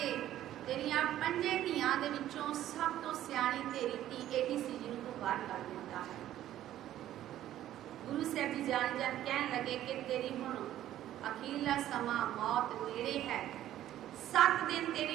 तेरिया पंजे धियां दे विचों सब तो सियाणी तेरी धी यही सी जिन्हों तू बाहर कर दिता है। गुरु साहब जी जान जान कहन लगे कि तेरी हुण अखीरला समा मौत नेड़े है, 7 दिन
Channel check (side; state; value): left; quieter; 12.7 dB